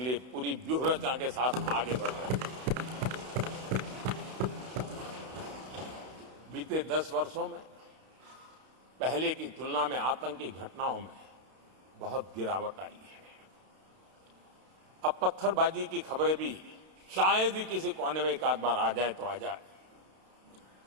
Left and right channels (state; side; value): late; left; 32 ms